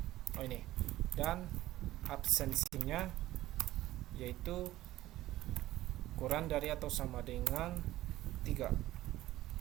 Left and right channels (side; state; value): left; quieter; 15.5 dB